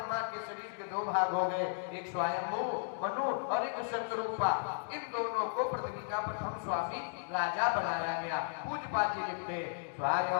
के शरीर के दो भाग हो गए, एक स्वयंभू मनु और एक शतरूपा। इन दोनों को पृथ्वी का प्रथम स्वामी राजा बनाया गया। पूज्यपाद जी लिखते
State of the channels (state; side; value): silent; right; digital silence